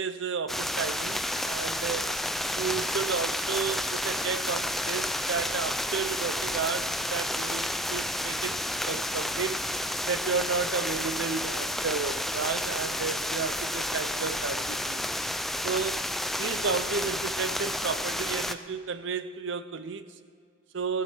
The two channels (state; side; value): normal; both; correlation 0.41